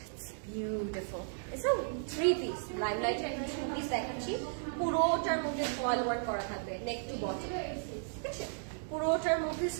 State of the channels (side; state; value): left; silent; 54 dB below the other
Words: It's beautiful. It's a 3-piece. Limelight এর 2-piece দেখাচ্ছি। পুরোটার মধ্যে ফয়েল ওয়ার্ক করা থাকবে নেক টু বটম, ঠিক আছে। পুরোটার মধ্যে